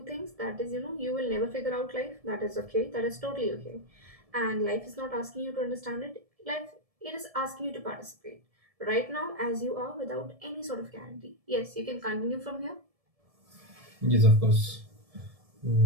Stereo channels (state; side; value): late; left; 1.7 ms